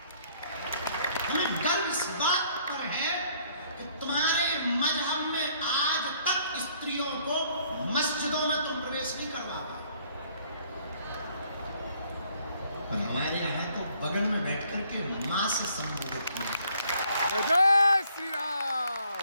हमें गर्व इस बात पर है कि तुम्हारे मजहब में आज तक स्त्रियों को मस्जिदों में तुम प्रवेश नहीं करवा पाए, पर हमारे यहाँ तो बगल में बैठ करके मां से संबोधित किया। जय जय श्री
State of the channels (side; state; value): both; inverted; correlation -0.64